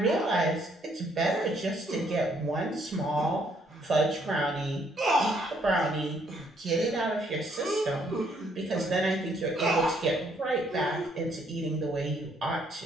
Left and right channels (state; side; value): normal; both; correlation 0.68